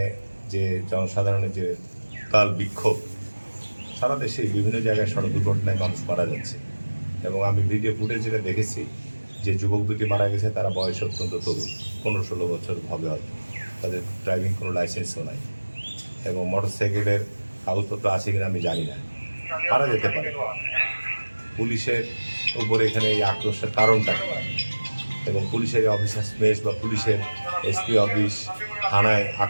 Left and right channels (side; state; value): both; inverted; correlation -1.00